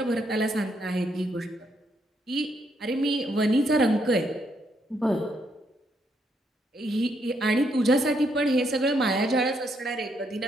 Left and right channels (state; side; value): normal; both; correlation 0.75